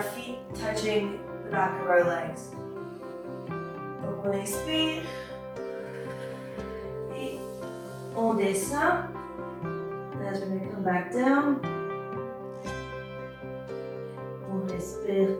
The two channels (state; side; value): identical; both; correlation 1.00